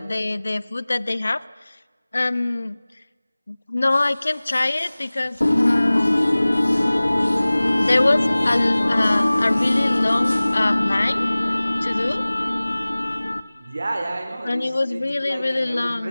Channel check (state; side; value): inverted; both; correlation -0.99